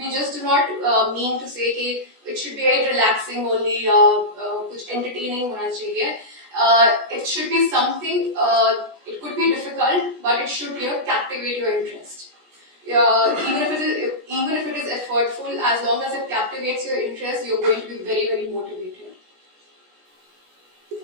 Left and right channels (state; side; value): late; left; 16 ms